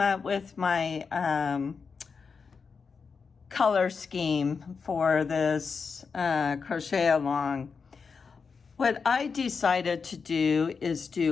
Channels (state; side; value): quieter; right; 5.3 dB